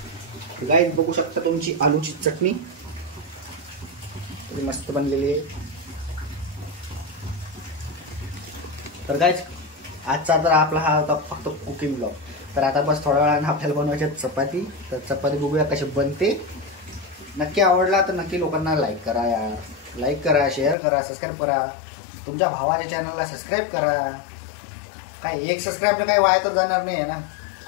गाईस बघू शकता तुमची आलूची चटणी किती मस्त बनलेली आहे. तर गाईस आजचा तर आपला हा होता फक्त कुकिंग ब्लॉग. तर आता बस थोड्या वेळाने आपल्याला बनवायची चपाती. तर चपाती बघूया कशी बनते. नक्की आवडला तर नक्की लोकांना लाईक करा यार. लाईक करा, शेअर करा, सबस्क्राईब करा. तुमच्या भावाच्या चॅनलला सबस्क्राईब करा. काय एक सबस्क्राईबनं काही वाया तर जाणार नाही आहे ना.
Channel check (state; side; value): drops out; right; at 20.8 s